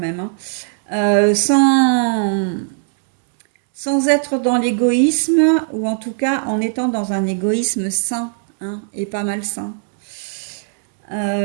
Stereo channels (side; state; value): left; silent; 67 dB below the other